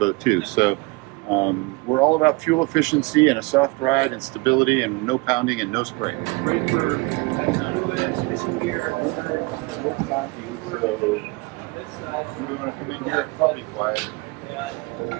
too. So we're all about fuel efficiency and a soft ride and stability and no pounding and no spray. Great for fishing gear. So you want to come in here and probably quiet.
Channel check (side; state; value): left; quieter; 25.8 dB